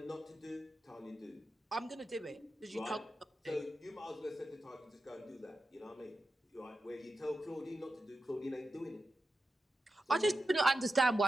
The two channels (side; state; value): both; normal; correlation 0.90